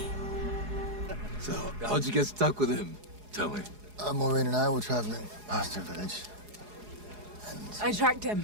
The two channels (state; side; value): late; left; 4.8 ms